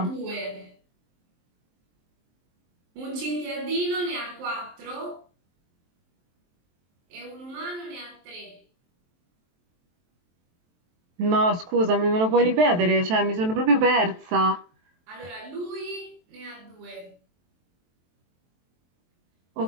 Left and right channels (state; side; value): late; left; 23 ms